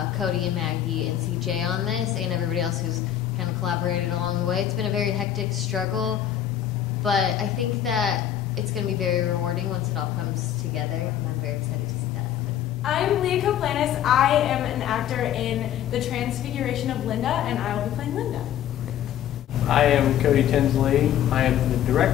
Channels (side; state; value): right; quieter; 10.8 dB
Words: Cody and Maggie and CJ on this, and everybody else who's kind of collaborated along the way. It's been a very hectic struggle, but I think that it's going to be very rewarding once it all comes together, and I'm very excited to see that happen. I'm Leah Koplanis. I am an actor in The Transfiguration of Linda, and I will be playing Linda. I am Cody Tinsley. I am the